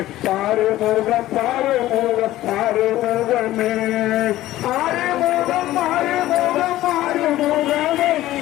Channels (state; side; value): quieter; right; 15.2 dB